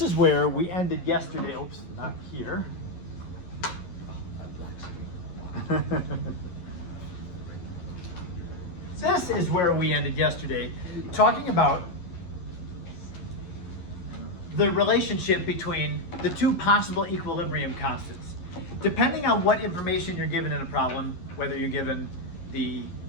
is where we ended yesterday. Oops, not here. This is where we ended yesterday, talking about the relationship between the two possible equilibrium constants. Depending on what information you're given in a problem, whether you're given the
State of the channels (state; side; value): late; right; 11 ms